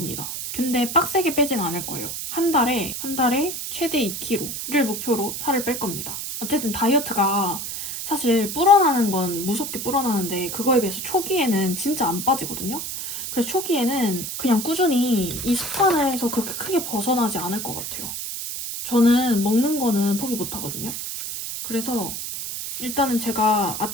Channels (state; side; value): noise; right; hiss, 6 dB below the sound